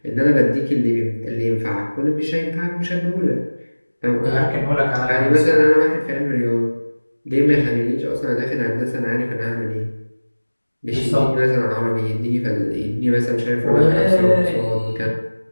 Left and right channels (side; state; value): both; inverted; correlation -1.00